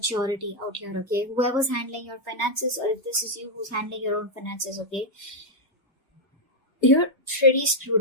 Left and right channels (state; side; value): normal; both; correlation -0.02